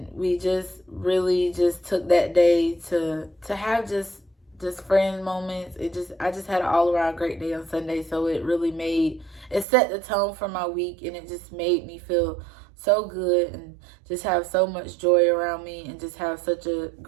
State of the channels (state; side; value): drops out; left; at 9.7 s